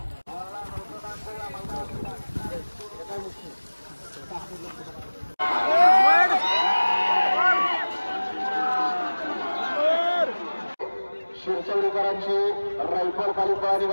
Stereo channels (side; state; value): both; inverted; correlation -1.00